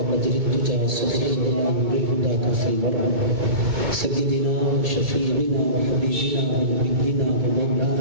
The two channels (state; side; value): late; left; 2.2 ms